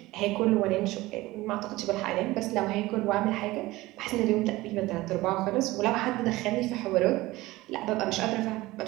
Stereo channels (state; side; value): quieter; left; 18.9 dB